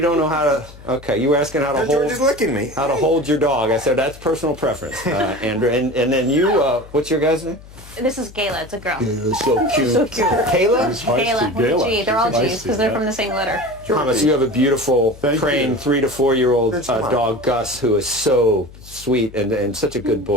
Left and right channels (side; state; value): left; noise; hum, 19 dB below the sound